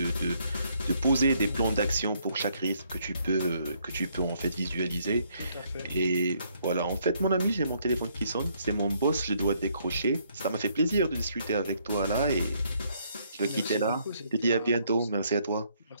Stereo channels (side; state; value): both; inverted; correlation -0.69